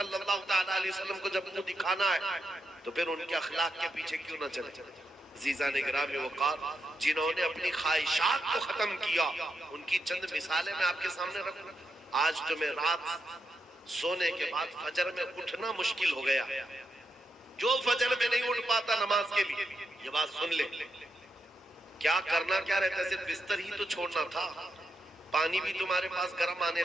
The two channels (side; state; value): both; normal; correlation 0.84